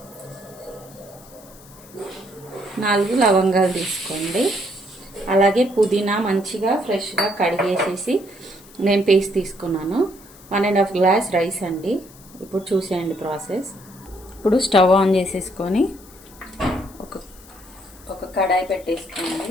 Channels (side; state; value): left; noise; hiss, 23 dB below the sound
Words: 4 లవంగాలు తీసుకోండి. అలాగే పుదీనా మంచిగా ఫ్రెష్గా కడిగేసేసి నేను పేస్ట్ తీసుకున్నాను. 1.5 గ్లాస్ రైస్ అండి. ఇప్పుడు చూసేయండి ప్రాసెస్. ఇప్పుడు స్టవ్ ఆన్ చేసేసుకొని ఒక కడాయి